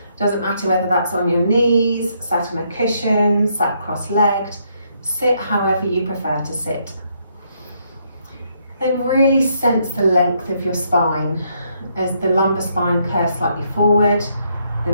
Doesn't matter whether that's on your knees, sat on a cushion, sat cross-legged. Sit however you prefer to sit. Then really sense the length of your spine as the lumbar spine curves slightly forward, the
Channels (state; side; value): inverted; both; correlation -0.73